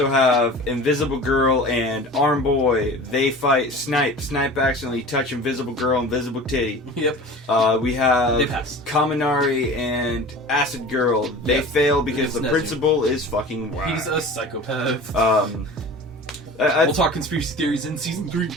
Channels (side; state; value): both; normal; correlation 0.38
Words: have Invisible Girl and Arm Boy. They fight Snipe. Snipe accidentally touch Invisible Girl, Invisible Titty. Yep. We have They pass. Kaminari and Acid Girl. They fail because the principal is fucking whack. He's a psychopath. We'll talk conspiracy theories in season 3.